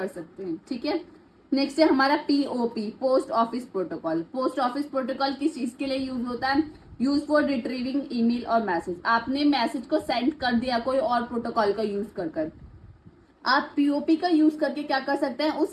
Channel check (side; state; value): both; identical; correlation 1.00